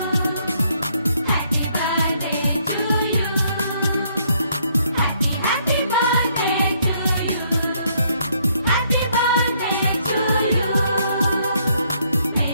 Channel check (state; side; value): inverted; both; correlation -0.69